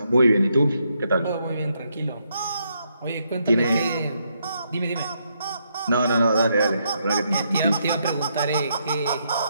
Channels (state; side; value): inverted; both; correlation -0.77